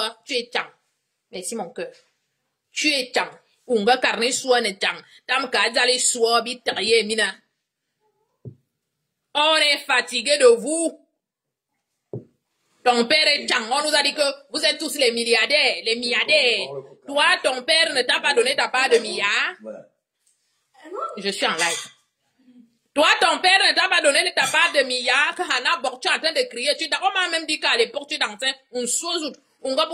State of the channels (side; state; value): both; identical; correlation 1.00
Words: tu es Tchang. Merci mon cœur. Tu es Tchang. Unga carne Soua ne Tchang. Tam ka Zali Soua, bitaye mina. On est fatigué de vous. Ton père est Tchang. On nous a dit que vous êtes tous les milliardaires, les milliardaires. Toi, ton père ne t'a pas donné ta part de milliards. Je suis en live. Toi, ton père ne t'a pas donné ta part de milliards. Hana Bok, tu es en train de crier. On m'a même dit qu'à l'époque, tu dansais un sozout. On va